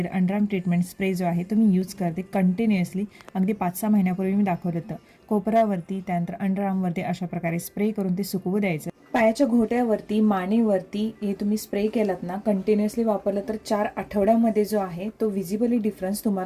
अंडरआर्म ट्रीटमेंट स्प्रे जो आहे तो मी यूज करते कंटिन्युअसली. अगदी 5-6 महिन्यापूर्वी मी दाखवलं होतं. कोपरावरती त्यानंतर अंडरआर्मवरती अशा प्रकारे स्प्रे करून ते सुकवू द्यायचं. पायाच्या घोट्यावरती, मानेवरती हे तुम्ही स्प्रे केलात ना, कंटिन्युअसली वापरलं तर 4 आठवड्यामध्ये जो आहे तो व्हिजिबली डिफरन्स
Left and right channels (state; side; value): identical; both; correlation 1.00